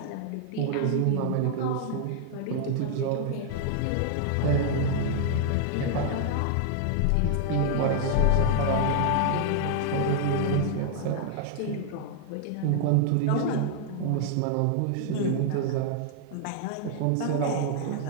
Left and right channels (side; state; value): both; different; correlation 0.00